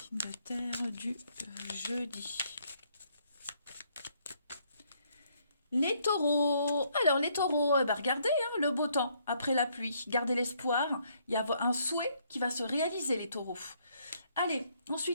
de terre du jeudi. Les taureaux. Alors les taureaux, regardez hein, le beau temps après la pluie. Gardez l'espoir. Il y a un souhait qui va se réaliser, les taureaux. Allez,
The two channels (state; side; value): inverted; both; correlation -0.69